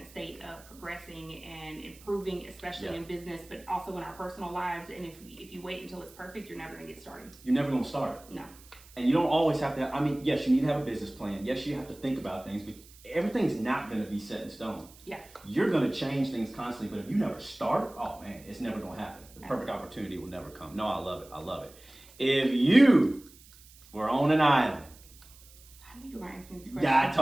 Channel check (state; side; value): noise; right; hiss, 23 dB below the sound